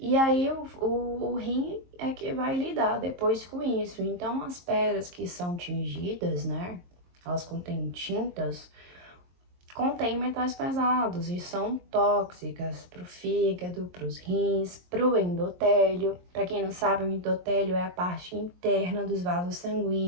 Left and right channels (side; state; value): left; late; 23 ms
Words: aí o rim é que vai lidar depois com isso. Então as pedras que são tingidas, né, elas contêm tintas, contém metais pesados e são tóxicas para o fígado, para os rins, para o endotélio. Para quem não sabe, o endotélio é a parte interna dos vasos